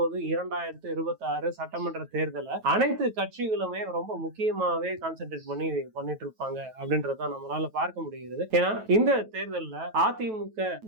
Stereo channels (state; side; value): late; left; 9.2 ms